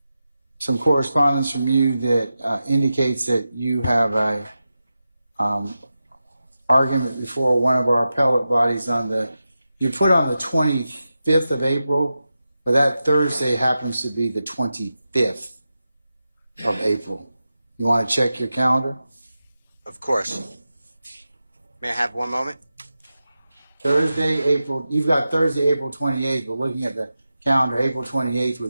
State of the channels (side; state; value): both; inverted; correlation -0.91